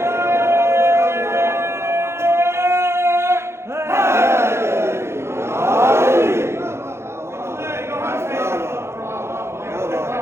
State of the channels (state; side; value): late; left; 0.13 ms